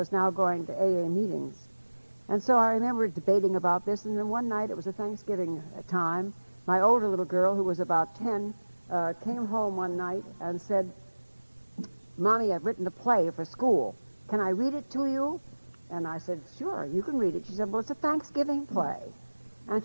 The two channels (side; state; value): both; inverted; correlation -1.00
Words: now going to AA meetings. And so I remember debating about this, and then one night, it was a Thanksgiving time, my older little girl, who was about 10, came home one night and said, Mommy, I've written a play for school. Can I read it to you? And I said, sure, you can read it. She said, well, it's a Thanksgiving play. And